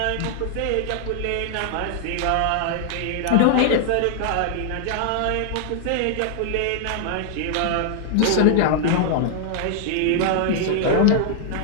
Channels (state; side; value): different; both; correlation -0.01